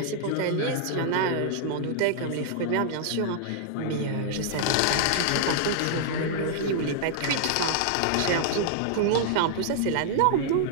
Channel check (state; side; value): different; both; correlation -0.01